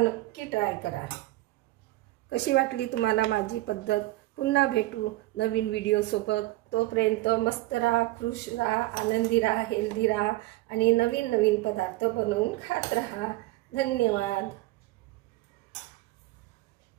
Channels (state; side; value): quieter; left; 18.6 dB